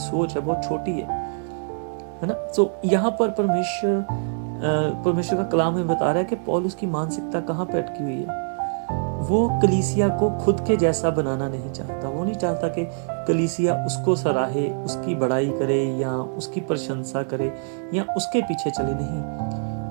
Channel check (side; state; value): left; silent; digital silence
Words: है, बहुत छोटी है ना। तो यहाँ पर परमेश्वर का कलाम हमें बता रहा है कि पौलुस की मानसिकता कहाँ पे अटकी हुई है। वो कलीसिया को खुद के जैसा बनाना नहीं चाहता। वो नहीं चाहता कि कलीसिया उसको सराहे, उसकी बड़ाई करे या उसकी प्रशंसा करे या उसके पीछे चले। नहीं,